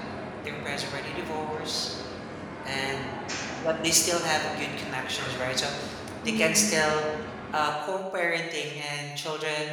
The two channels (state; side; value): identical; both; correlation 1.00